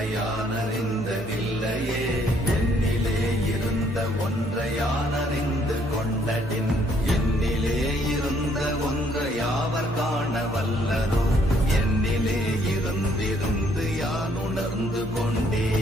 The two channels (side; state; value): both; normal; correlation 0.66